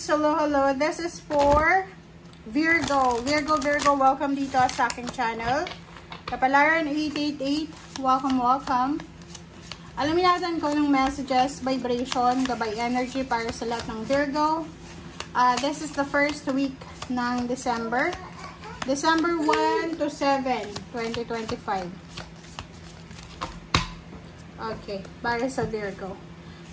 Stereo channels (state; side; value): identical; both; correlation 1.00